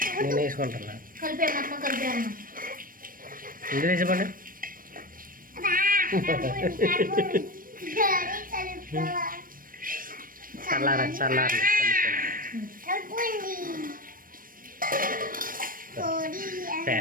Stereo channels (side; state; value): left; late; 0.41 ms